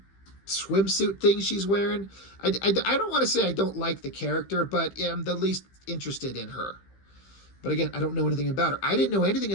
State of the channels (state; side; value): late; right; 15 ms